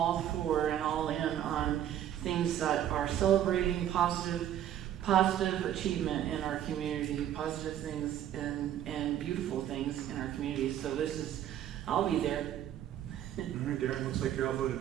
for and all in on things that are celebrating positive achievement in our community, positive things and beautiful things in our community. So I'll be there. All right, Darren, looks like you're outvoted.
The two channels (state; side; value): quieter; left; 11.1 dB